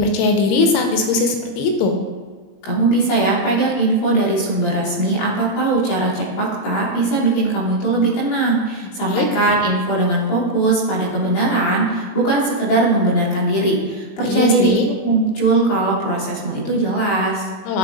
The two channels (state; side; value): late; right; 21 ms